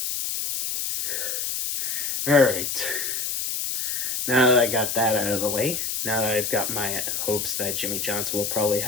Alright, now that I got that out of the way, now that I've got my hopes that Jimmy Johnson will probably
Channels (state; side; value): noise; left; hiss, 2 dB below the sound